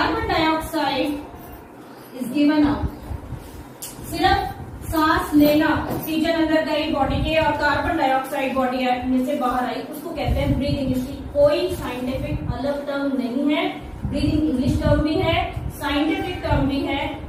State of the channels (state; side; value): identical; both; correlation 1.00